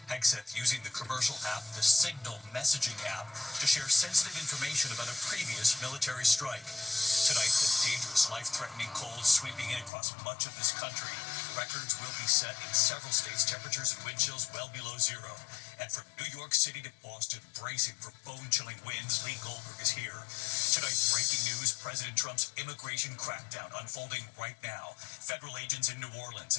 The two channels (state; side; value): drops out; right; at 9.9 s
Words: Hegseth using the commercial app, the Signal messaging app, to share sensitive information about a previous military strike. Tonight, the dangerous, life-threatening cold sweeping in across much of this country. Records will be set in several states, temperatures and wind chills well below zero. And from New York City to Boston, bracing for bone-chilling winds, Lee Goldberg is here. Tonight, breaking news, President Trump's immigration crackdown unfolding right now. Federal agents in New Orleans